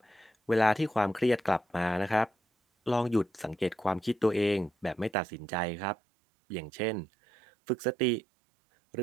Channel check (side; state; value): left; drops out; at 5.2 s